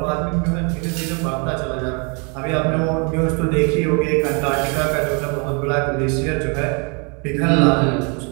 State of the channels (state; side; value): quieter; left; 34.7 dB